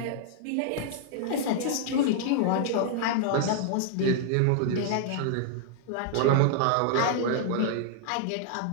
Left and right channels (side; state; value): both; different; correlation -0.01